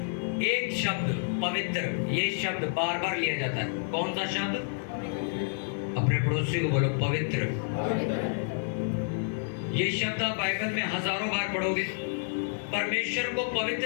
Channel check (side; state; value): right; silent; digital silence